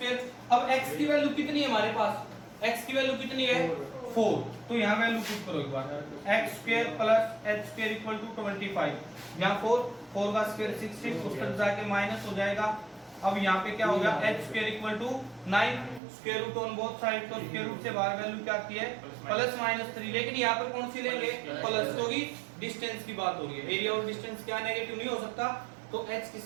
अब x की वैल्यू कितनी है हमारे पास, x की वैल्यू कितनी है 4। तो यहाँ वैल्यू पुट करो एक बार, x square plus h square equal to 25, यहाँ 4 का स्क्वायर 6 उस तरफ जाके माइनस हो जाएगा। अब यहाँ पे क्या हो गया h square equal to 9, square root on both side, तो स्क्वायर रूट से बाहर वैल्यू क्या की है +-3। लेकिन यहाँ पर कौन सी लेंगे, प्लस, क्योंकि डिस्टेंस की बात हो रही है, एरिया और डिस्टेंस क्या नेगेटिव नहीं हो सकता। तो h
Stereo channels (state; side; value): drops out; left; at 16.0 s